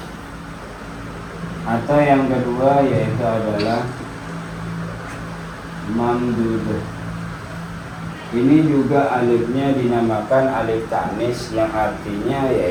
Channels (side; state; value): both; identical; correlation 1.00